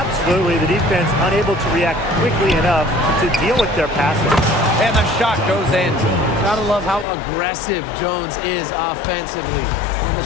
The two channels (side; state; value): right; drops out; at 7.1 s